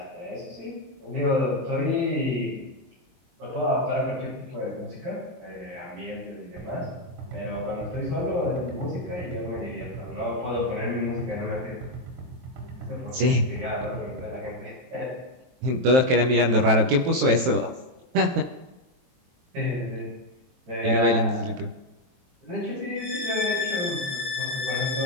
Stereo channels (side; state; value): left; late; 23 ms